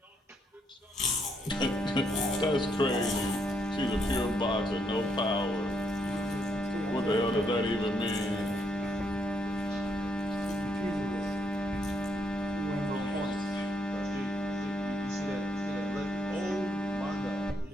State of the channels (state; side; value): normal; both; correlation 0.75